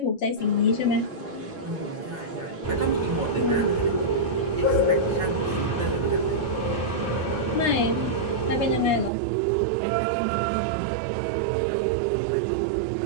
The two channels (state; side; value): drops out; left; at 9.1 s